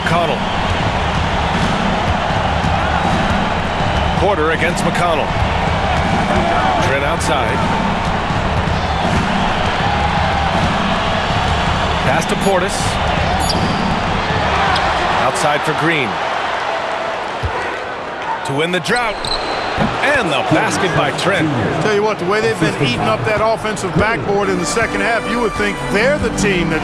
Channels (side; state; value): both; identical; correlation 1.00